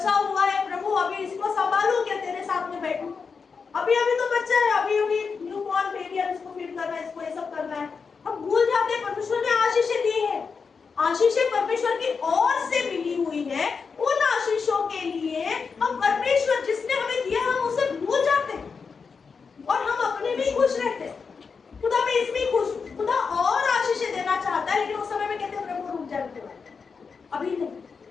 हुआ है प्रभु, अभी इसको संभालू क्या, तेरे साथ में बैठू, अभी तो बच्चा है, अभी न्यू बॉर्न बेबी है, इसको फीड करना है, इसको ये सब करना है। हम भूल जाते हैं परमेश्वर ने आशीषें दी है, आशीषें परमेश्वर की ओर से मिली हुई है। उन आशीषों के लिए हम परमेश्वर जिसने हमें दिया हम उसे भूल जाते हैं और हम अपने में खुश रहते हैं। खुदा मैं इसमें खुश, खुदा और आशीषें देना चाहता है, लेकिन उस समय में कहते हैं प्रभु रुक जाते हैं, अभी नहीं।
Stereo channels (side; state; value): right; quieter; 5.4 dB